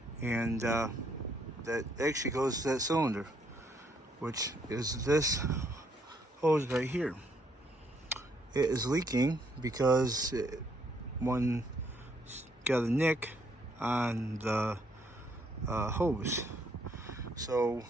and that actually goes to that cylinder, which is this hose right here. It is leaking because one got a nick on the hose. So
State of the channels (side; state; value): both; normal; correlation 0.70